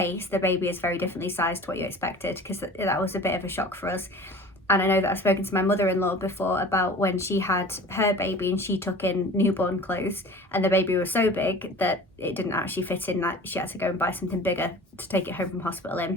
the baby is very differently sized to what you expected, because that was a bit of a shock for us. And I know that I've spoken to my mother-in-law before about when she had her baby and she took in newborn clothes and the baby was so big that it didn't actually fit in, that she had to go and buy something bigger to take it home from hospital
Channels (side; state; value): both; normal; correlation 0.42